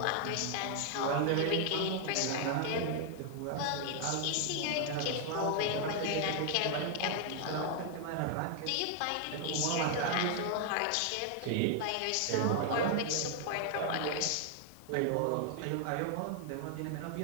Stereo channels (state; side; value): different; both; correlation 0.00